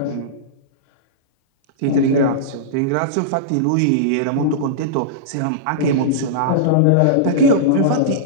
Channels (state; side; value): different; both; correlation -0.03